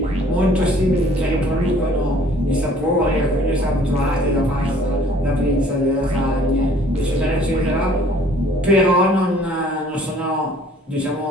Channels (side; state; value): both; normal; correlation 0.55